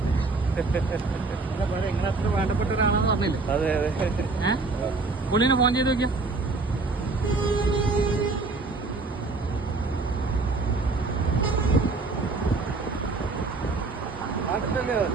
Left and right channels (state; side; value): quieter; left; 3.7 dB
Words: നിങ്ങൾ അത്ര വേണ്ടപ്പെട്ട ഒരാളാന്ന് പറഞ്ഞില്ലേ? അതെ അതെ. പുള്ളിനെ ഫോൺ ചെയ്ത് നോക്കിയാ?